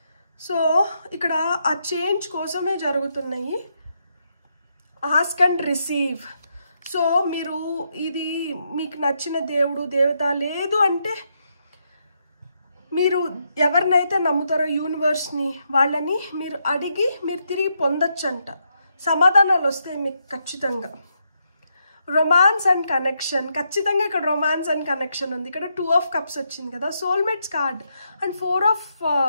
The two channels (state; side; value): inverted; both; correlation -0.80